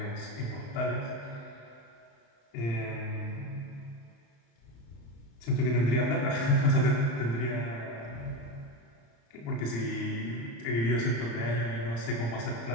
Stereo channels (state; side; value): late; right; 35 ms